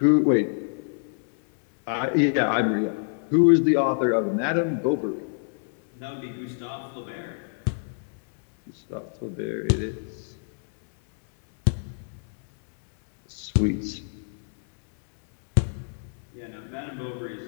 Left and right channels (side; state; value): right; silent; 61 dB below the other